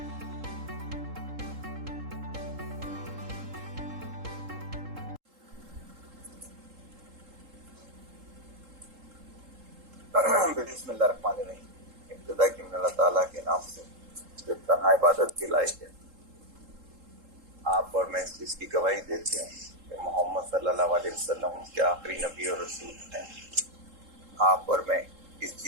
بسم اللہ الرحمن الرحیم۔ ابتدا کی من اللہ تعالیٰ کے نام سے جو تنہا عبادت کے لائق ہے۔ آپ اور میں اس چیز کی گواہی دیتے ہیں کہ محمد صلی اللہ علیہ وسلم کے آخری نبی اور رسول ہیں۔ آپ اور میں اس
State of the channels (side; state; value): left; late; 3.7 ms